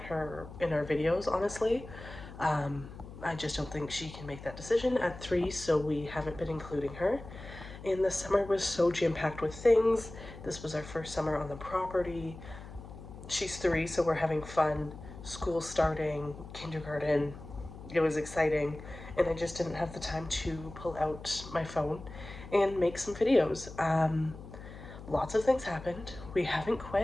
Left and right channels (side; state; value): left; noise; hum, 14 dB below the sound